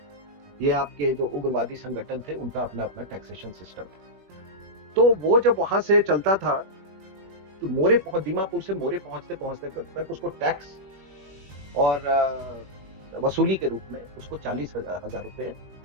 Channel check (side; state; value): left; late; 21 ms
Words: ये आपके जो उग्रवादी संगठन थे उनका अपना अपना टैक्सेशन सिस्टम था। तो वो जब वहां से चलता था तो दीमापुर से मोरे पहुंचते तक उसको टैक्स और वसूली के रूप में उसको 40,000 रुपए